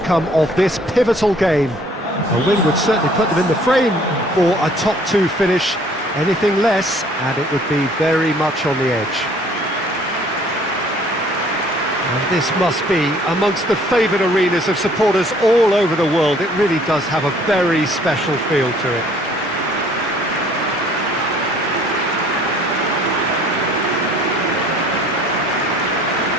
of this pivotal game. A win would certainly put them in the frame for a top two finish. Anything less, and it would be very much on the edge. And this must be amongst the favoured arenas of supporters all over the world. It really does have a very special feel to it.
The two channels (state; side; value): normal; both; correlation 0.57